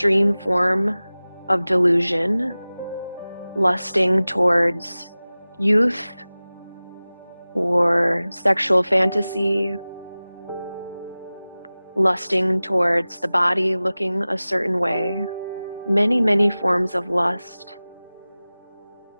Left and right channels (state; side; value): inverted; both; correlation -0.98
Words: form of delusion, lusting towards youth, or sexual fantasy, lusting towards the body looking a certain way, many, many forms of lust.